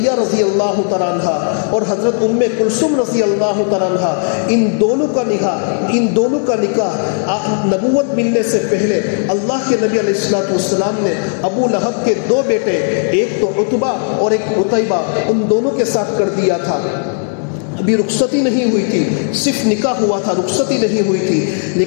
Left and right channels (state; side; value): silent; right; 60 dB below the other